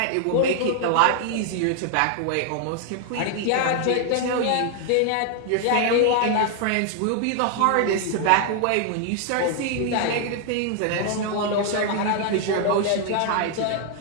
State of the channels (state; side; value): different; both; correlation 0.00